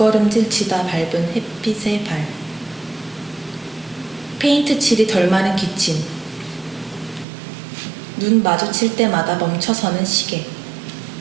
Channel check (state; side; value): drops out; left; at 7.2 s